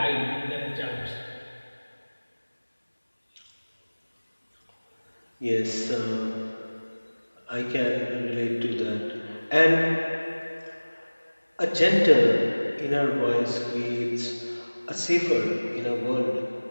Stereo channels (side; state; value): both; inverted; correlation -1.00